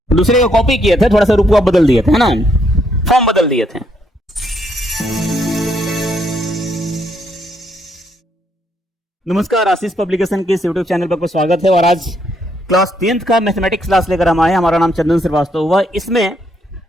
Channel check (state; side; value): normal; both; correlation 0.73